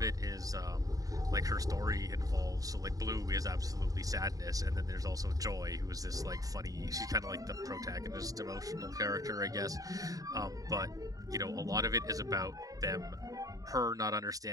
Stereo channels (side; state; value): left; late; 0.17 ms